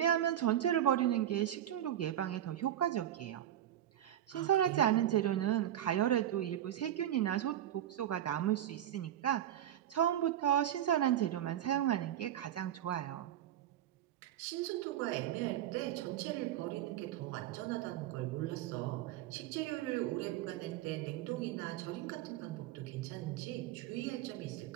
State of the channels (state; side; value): quieter; left; 11.7 dB